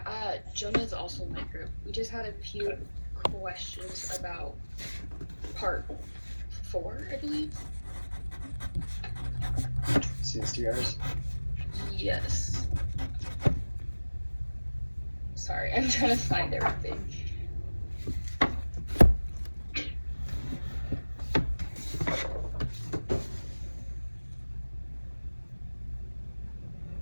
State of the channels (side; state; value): both; inverted; correlation -1.00